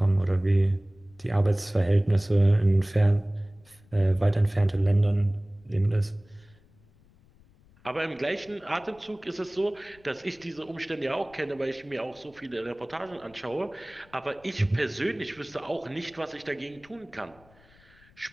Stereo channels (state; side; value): noise; left; rumble, 28 dB below the sound